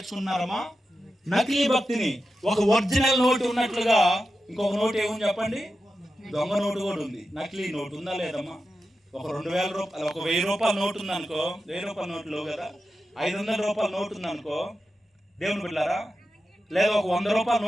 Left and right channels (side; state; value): both; normal; correlation 0.91